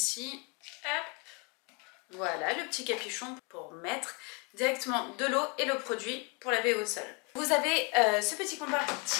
hop, voilà, le petit capuchon pour mettre directement de l'eau et le produit pour laver au sol. Vous avez ce petit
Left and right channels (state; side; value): quieter; right; 32.5 dB